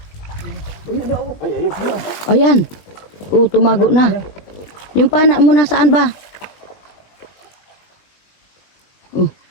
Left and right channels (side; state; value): right; late; 20 ms